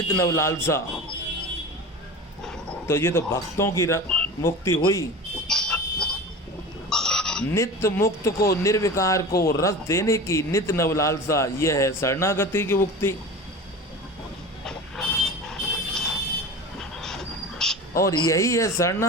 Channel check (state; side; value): normal; both; correlation 0.33